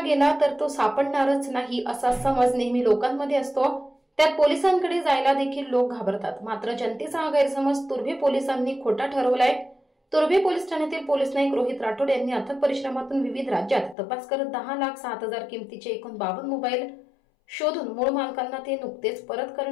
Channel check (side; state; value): right; drops out; at 14.0 s